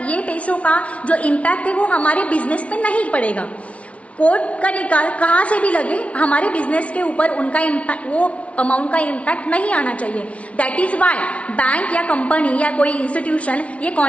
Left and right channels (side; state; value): right; late; 0.063 ms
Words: ये पैसों का जो इम्पैक्ट है वो हमारे बिजनेस पे नहीं पड़ेगा। कोर्ट का निकाल कहाँ से भी लगे, हमारे बिजनेस के ऊपर उनका इम्पैक्ट, वो अमाउंट का इम्पैक्ट नहीं आना चाहिए। दैट इज वाई बैंक या कंपनी या कोई इंस्टीट्यूशन ये